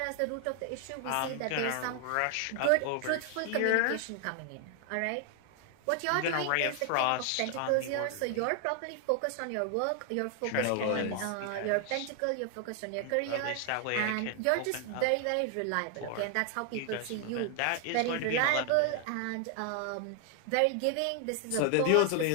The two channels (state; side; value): different; both; correlation 0.00